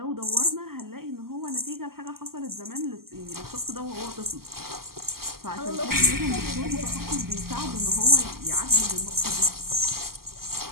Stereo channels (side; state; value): left; late; 0.93 ms